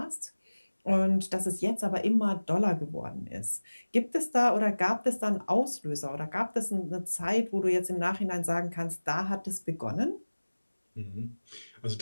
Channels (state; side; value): inverted; both; correlation -1.00